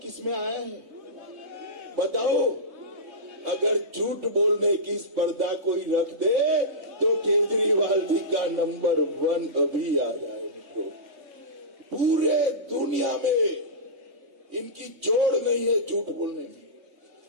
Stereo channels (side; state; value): left; late; 3.2 ms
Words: किस में आया है? बताओ। अगर झूठ बोलने की स्पर्धा कोई रख दे तो केजरीवाल जी का नंबर 1 अभी आ जाए। मित्रों, पूरे दुनिया में इनकी जोड़ नहीं है झूठ बोलने में।